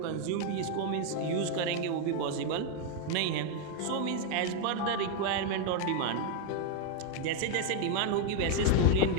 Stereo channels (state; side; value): different; both; correlation 0.01